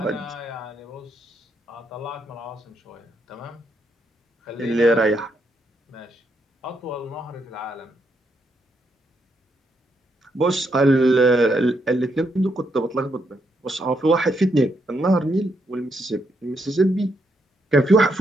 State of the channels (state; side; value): normal; both; correlation 0.78